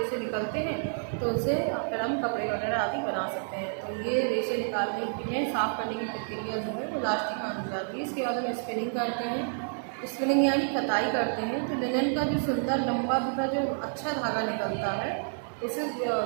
निकलते हैं तो उनसे फिर हम कपड़े वगैरह आदि बना सकते हैं। तो ये रेशे निकालने के लिए साफ़ करने की प्रक्रिया जो है वो लास्ट ही मानी जाती है। इसके बाद हम स्पिनिंग करते हैं, स्पिनिंग यानी कताई करते हैं। तो लिनन का जो सुंदर लंबा तथा जो अच्छा धागा निकलता है उसे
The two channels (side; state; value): left; silent; 58 dB below the other